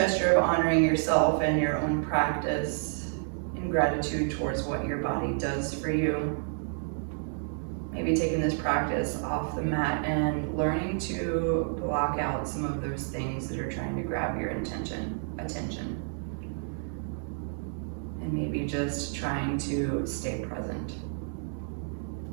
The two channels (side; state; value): left; silent; 58 dB below the other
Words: of honoring yourself and your own practice in gratitude towards what your body does for you. Maybe taking this practice off the mat and learning to block out some of those things that are trying to grab your attention. And maybe just trying to stay present.